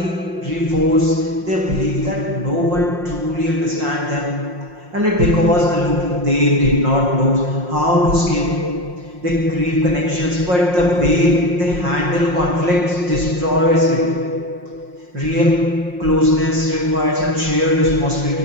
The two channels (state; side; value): late; left; 5.6 ms